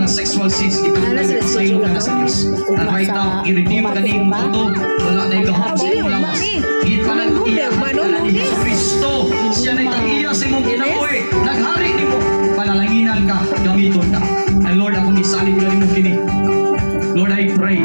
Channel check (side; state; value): both; inverted; correlation -1.00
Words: sexual sins, ipagpasaylo ka na sa Diyos. And right now, i-redeem ka ni mong ito, wala na ikahapon mo lawas. Ipanag-iya ka na ni Jesus Cristo. Siya na itang-iya sa imong kinabuhi. Naghari ni mo, panalanginan ka, gamiton ka. And Lord, ako nisalin ka rin mo kini. Lord, I pray,